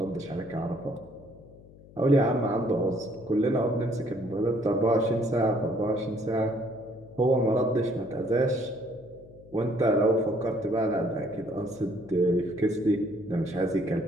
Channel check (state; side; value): noise; left; hum, 22 dB below the sound